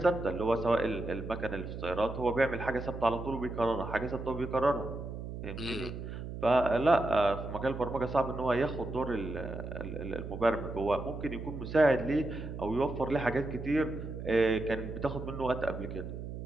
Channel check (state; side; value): noise; right; hum, 8 dB below the sound